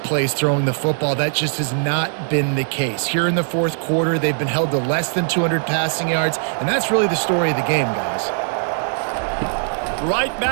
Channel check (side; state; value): left; silent; digital silence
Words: plays throwing the football. That just has not been the case. Here in the fourth quarter, they've been held to less than 200 passing yards, and that's really the story of the game, guys. Right